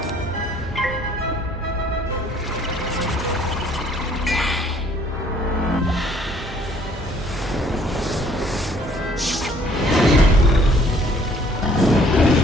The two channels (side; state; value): both; normal; correlation 0.60